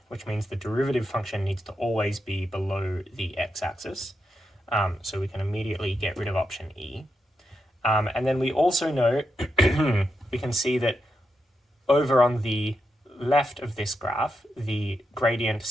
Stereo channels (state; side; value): normal; both; correlation 0.85